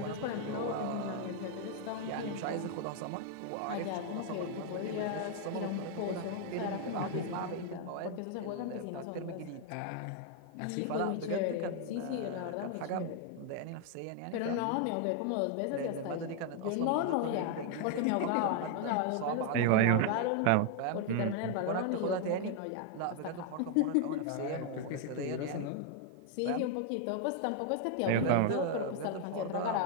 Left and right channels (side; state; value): both; different; correlation 0.00